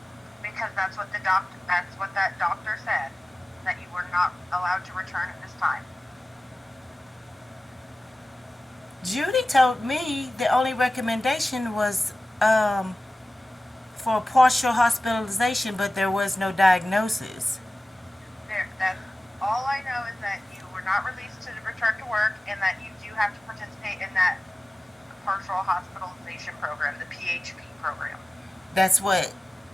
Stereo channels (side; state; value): both; normal; correlation 0.96